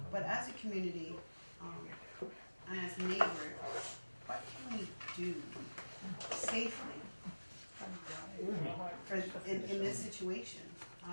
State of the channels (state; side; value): inverted; both; correlation -1.00